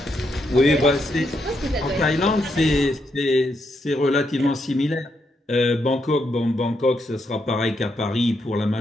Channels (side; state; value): both; normal; correlation 0.79